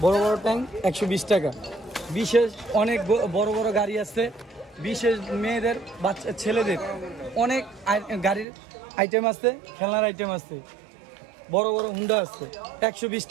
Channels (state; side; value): drops out; left; at 8.5 s